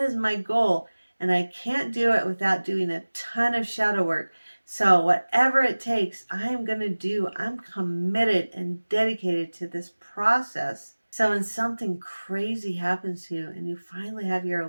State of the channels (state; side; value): inverted; both; correlation -1.00